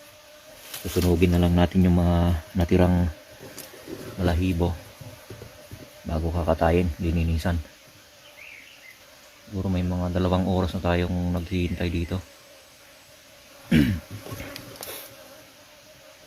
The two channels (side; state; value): both; identical; correlation 1.00